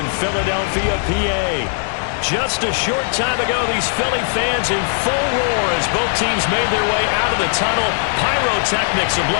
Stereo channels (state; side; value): silent; right; 57 dB below the other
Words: Philadelphia, PA. Just a short time ago, these Philly fans in full roar as both teams made their way out of the tunnel. Pyrotechnics